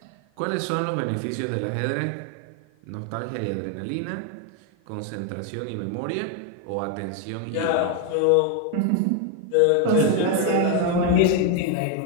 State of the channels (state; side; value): different; both; correlation 0.01